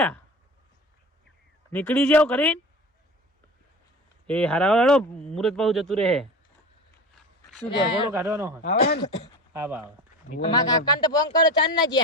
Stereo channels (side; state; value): both; normal; correlation 0.31